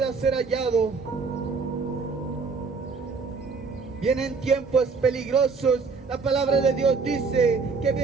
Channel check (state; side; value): quieter; left; 4.7 dB